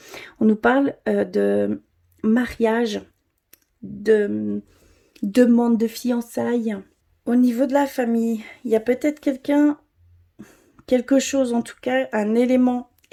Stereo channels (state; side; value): identical; both; correlation 1.00